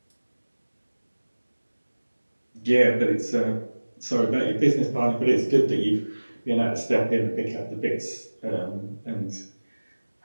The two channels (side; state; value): both; inverted; correlation -1.00